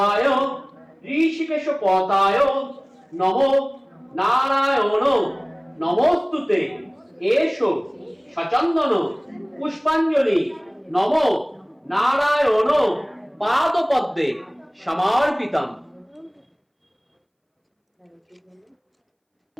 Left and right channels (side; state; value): both; identical; correlation 1.00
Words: ঋষিকেশ পদায় নমো নারায়ণ নমস্তুতে এষো সচন্দন পুষ্পাঞ্জলি নমো নারায়ণ পাদপদ্মে সমর্পিতম।